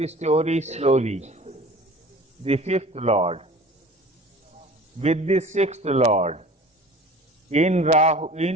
story slowly. The fifth lord with the sixth lord in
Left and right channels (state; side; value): normal; both; correlation 0.43